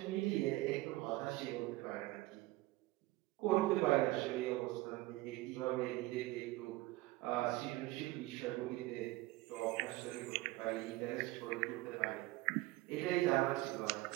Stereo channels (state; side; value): quieter; left; 19.3 dB